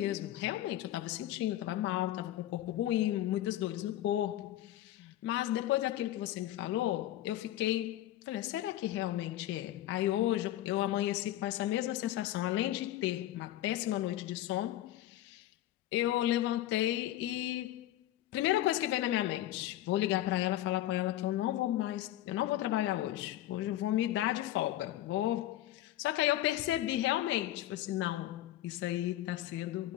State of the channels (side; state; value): right; quieter; 14.0 dB